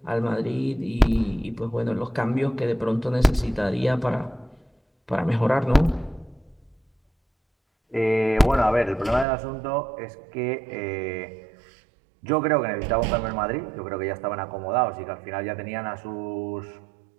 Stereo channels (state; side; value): drops out; left; at 9.2 s